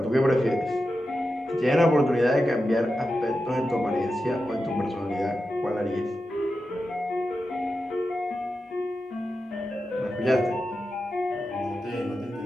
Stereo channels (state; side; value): normal; both; correlation 0.91